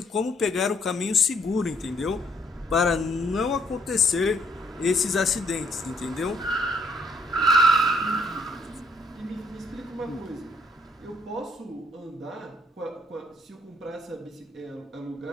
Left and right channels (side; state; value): both; normal; correlation 0.68